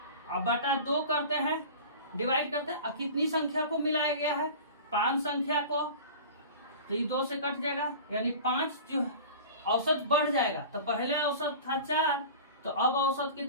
अब बटा 2 करते हैं, डिवाइड करते हैं। अब कितनी संख्या को मिलाया गया है, 5 संख्या को, तो ये 2 से कट जाएगा, यानी 5 जो औसत बढ़ जाएगा। तो पहले औसत था 4, तो अब औसत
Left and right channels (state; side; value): inverted; both; correlation -0.37